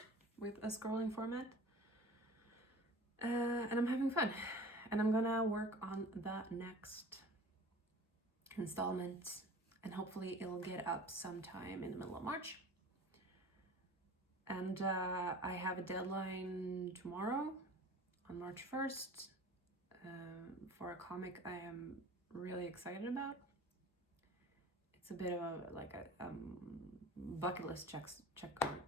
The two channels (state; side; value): normal; both; correlation 0.42